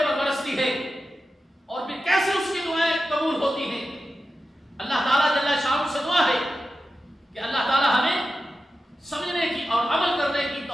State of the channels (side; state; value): both; normal; correlation 0.92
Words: برستی ہے، اور پھر کیسے اس کی دعائیں قبول ہوتی ہیں۔ اللہ تعالیٰ جل شانہ سے دعا ہے کہ اللہ تعالیٰ ہمیں سمجھنے کی اور عمل کرنے کی